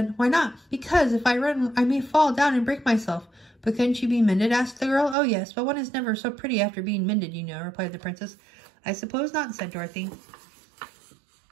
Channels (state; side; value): drops out; left; at 5.2 s